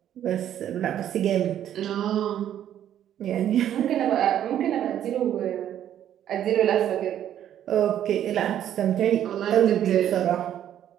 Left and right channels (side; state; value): left; quieter; 10.7 dB